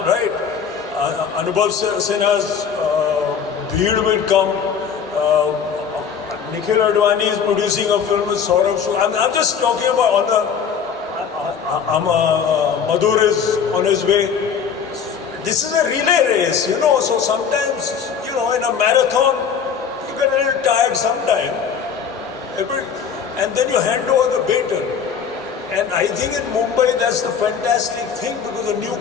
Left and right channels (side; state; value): right; quieter; 7.0 dB